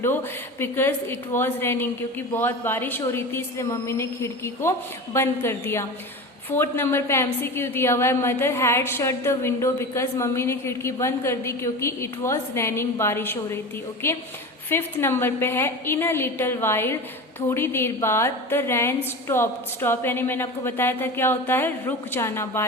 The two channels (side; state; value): both; normal; correlation 0.29